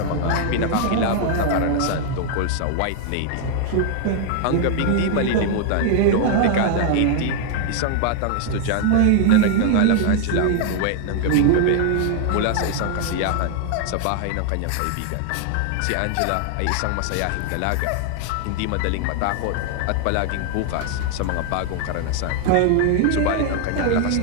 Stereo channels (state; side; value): different; both; correlation 0.00